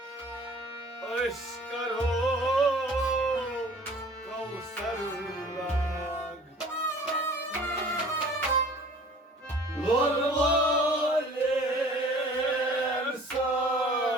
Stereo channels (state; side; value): normal; both; correlation 0.49